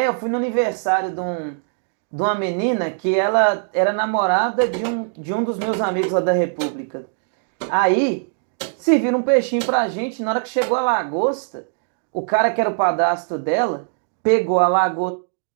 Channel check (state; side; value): silent; left; digital silence